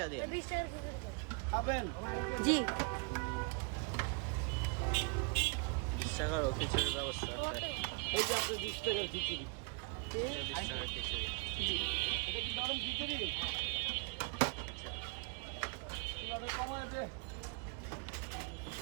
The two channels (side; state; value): left; quieter; 34.4 dB